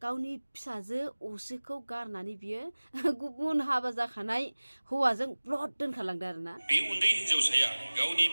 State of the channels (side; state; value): both; inverted; correlation -1.00